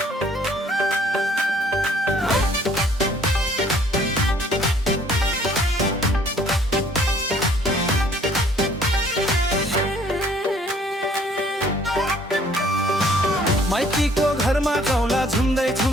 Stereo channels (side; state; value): both; normal; correlation 0.59